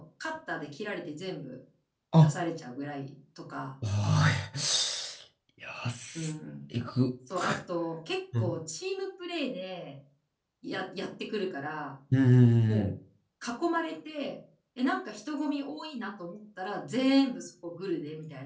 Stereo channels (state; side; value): identical; both; correlation 1.00